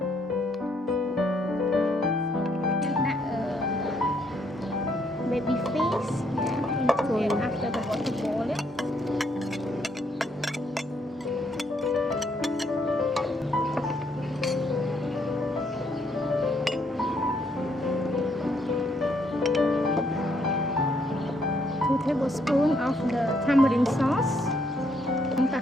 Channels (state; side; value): normal; both; correlation 0.71